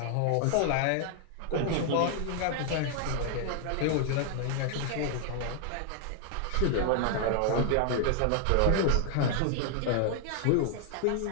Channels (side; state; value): both; different; correlation 0.00